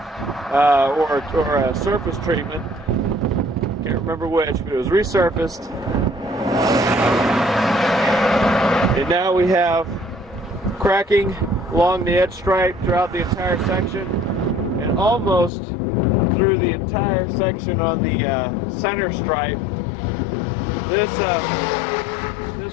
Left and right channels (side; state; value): right; drops out; at 15.5 s